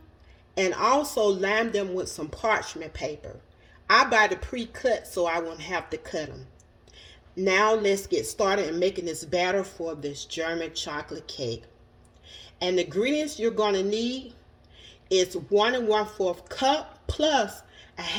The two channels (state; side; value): identical; both; correlation 1.00